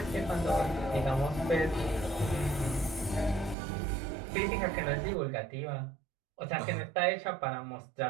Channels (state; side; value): drops out; left; at 3.6 s